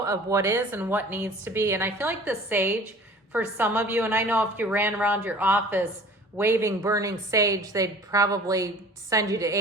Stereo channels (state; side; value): normal; both; correlation 0.46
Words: of what is and what needs to be. And I feel like the sage, for some of you, and I know if you ran around your office waving burning sage, they'd probably send you to